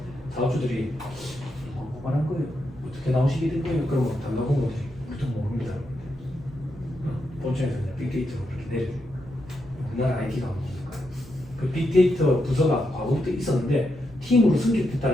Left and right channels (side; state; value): right; noise; rumble, 20 dB below the sound